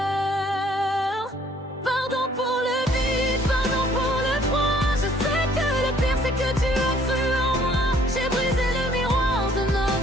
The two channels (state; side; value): normal; both; correlation 0.60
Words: Pardon pour le vide, pardon pour le froid. Je sais que le pire c'est que tu as cru en moi. J'ai brisé le miroir de